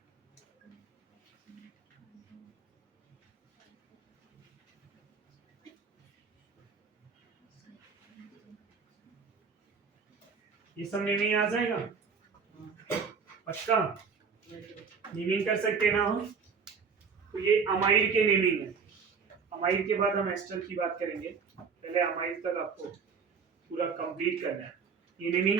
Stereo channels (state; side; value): quieter; left; 5.7 dB